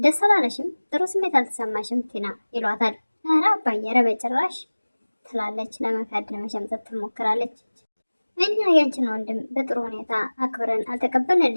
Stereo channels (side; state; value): both; inverted; correlation -1.00